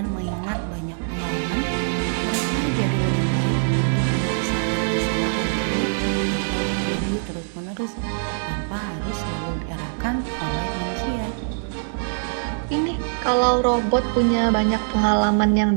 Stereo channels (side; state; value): left; silent; digital silence